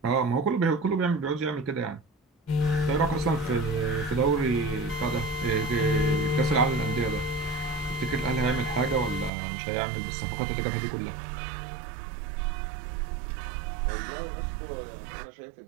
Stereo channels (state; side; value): drops out; left; at 9.3 s